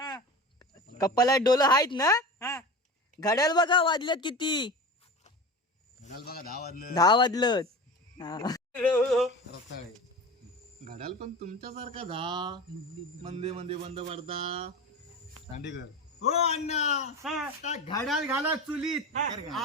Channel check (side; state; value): both; normal; correlation 0.30